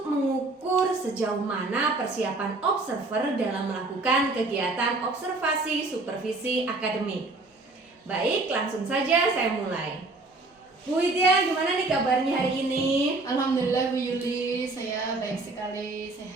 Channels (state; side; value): quieter; left; 3.2 dB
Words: mengukur sejauh mana persiapan observer dalam melakukan kegiatan observasi supervisi akademik. Baik, langsung saja saya mulai. Bu Widya, gimana nih kabarnya hari ini? Alhamdulillah Bu Yuli, saya baik sekali,